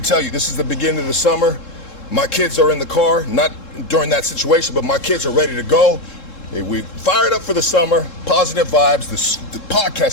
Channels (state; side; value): late; right; 3.7 ms